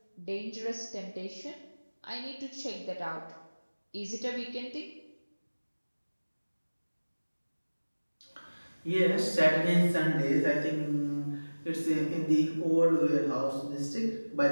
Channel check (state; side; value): inverted; both; correlation -1.00